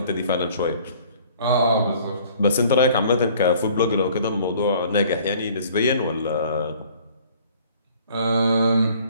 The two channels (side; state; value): both; inverted; correlation -0.54